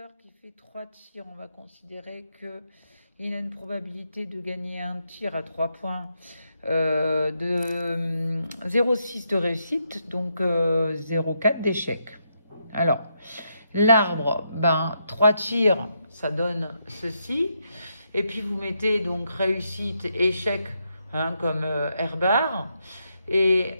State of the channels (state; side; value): inverted; both; correlation -0.80